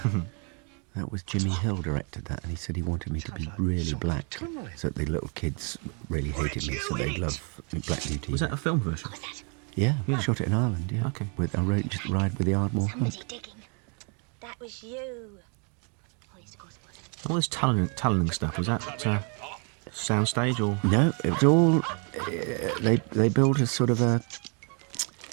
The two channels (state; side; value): quieter; left; 37.2 dB